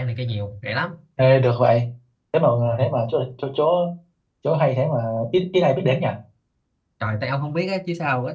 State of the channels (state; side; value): identical; both; correlation 1.00